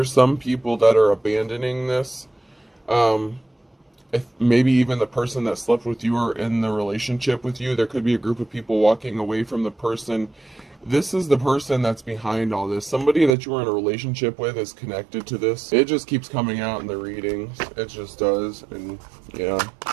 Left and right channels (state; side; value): drops out; left; at 13.4 s